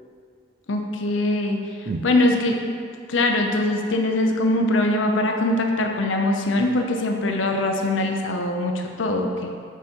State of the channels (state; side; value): normal; both; correlation 0.43